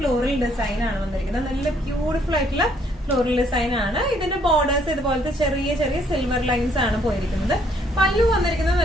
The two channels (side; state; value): both; normal; correlation 0.66